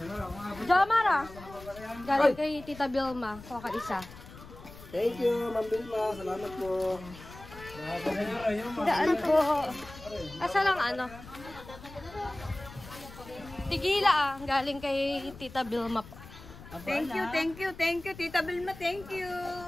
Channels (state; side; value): noise; left; rumble, 17 dB below the sound